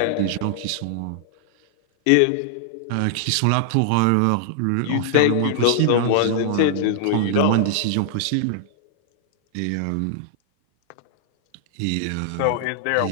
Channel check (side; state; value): both; different; correlation -0.01